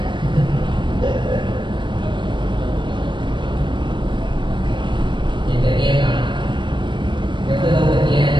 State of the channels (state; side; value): late; left; 0.23 ms